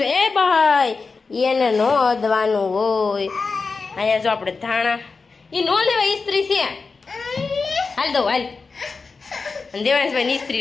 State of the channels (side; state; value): right; quieter; 4.4 dB